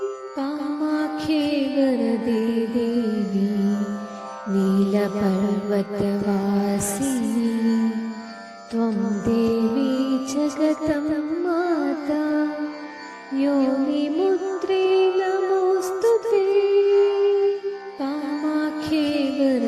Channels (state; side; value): identical; both; correlation 1.00